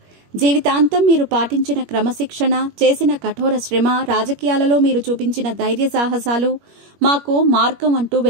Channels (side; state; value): left; late; 21 ms